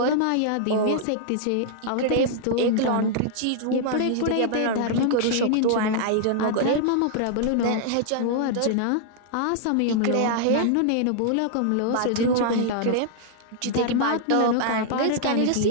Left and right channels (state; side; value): different; both; correlation -0.01